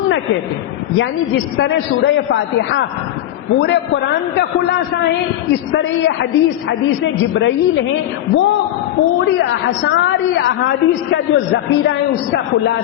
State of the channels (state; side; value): quieter; right; 12.7 dB